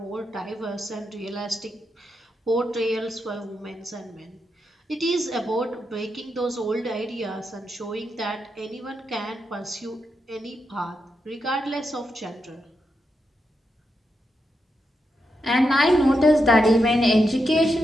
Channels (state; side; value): normal; both; correlation 0.85